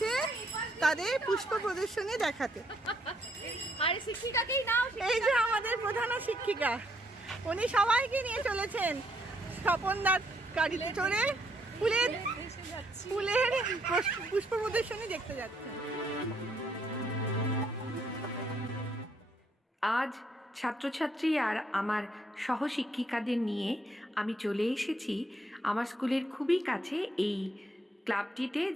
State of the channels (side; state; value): both; normal; correlation 0.71